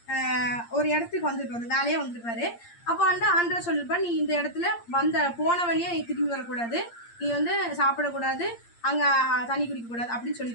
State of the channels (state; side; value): late; right; 8.6 ms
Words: ஒரு இடத்துக்கு வந்துருப்பாரு, வேலையா வந்துருப்பாரு. அப்போ வந்து ஆண்டவர் சொல்லியிருப்பாரு, நீ இந்த இடத்துல போன வழியே நீ திரும்பி வரக்கூடாது, நீ வந்து சாப்பிடக்கூடாது, அங்க தண்ணி குடிக்க கூடாது அப்படின்னு